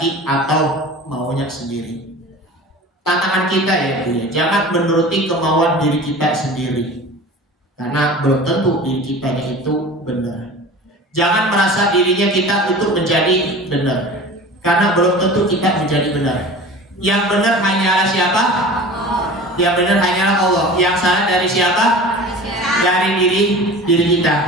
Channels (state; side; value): normal; both; correlation 0.38